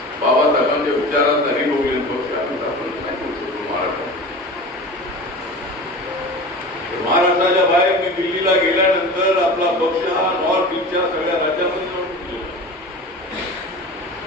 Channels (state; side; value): normal; both; correlation 0.34